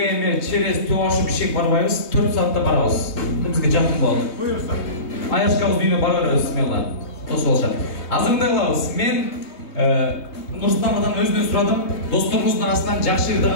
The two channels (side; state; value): right; late; 3.3 ms